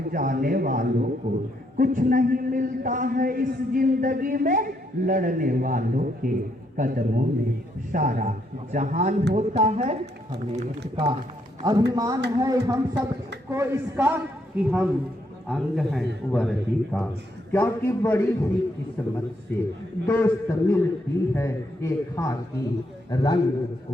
जाने वालों को कुछ नहीं मिलता है इस जिंदगी में, लड़ने वालों के कदमों में सारा जहान होता है। हमें इसका अभिमान है हम सबको इसका कि हम अंग हैं वर्दी का, क्योंकि बड़ी ही किस्मत से दोस्त मिलती है एक खाकी रंग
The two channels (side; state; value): both; normal; correlation 0.74